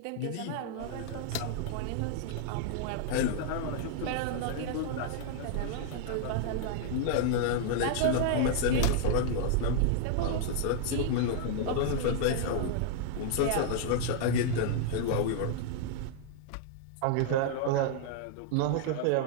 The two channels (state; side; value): different; both; correlation 0.00